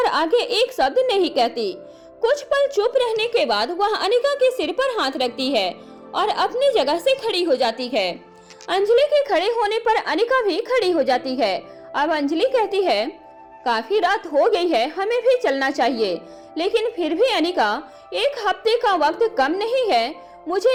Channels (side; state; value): both; identical; correlation 1.00